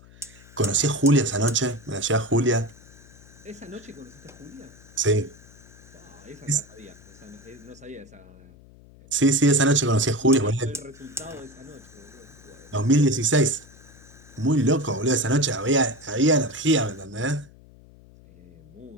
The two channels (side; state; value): left; noise; hum, 23 dB below the sound